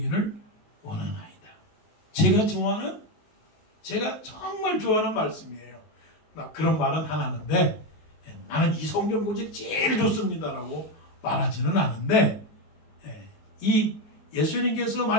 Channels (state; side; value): late; right; 20 ms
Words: 원하나이다. 제가 정말 좋아하는 말씀이에요. 막 그런 말은 안 하는데 나는 이 성경 구절이 제일 좋습니다라고 말하지는 않은데 이 예수님께서